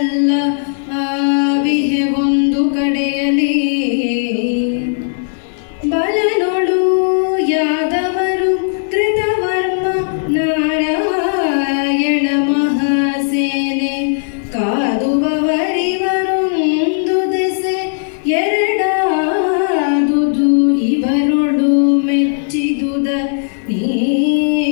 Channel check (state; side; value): silent; right; digital silence